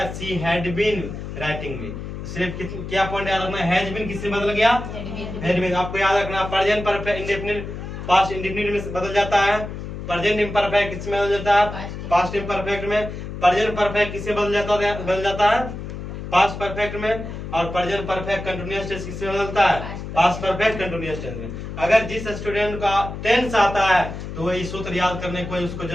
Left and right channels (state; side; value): noise; left; hum, 8 dB below the sound